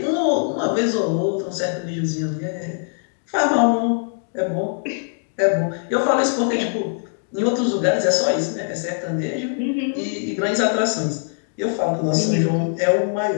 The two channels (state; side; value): silent; right; digital silence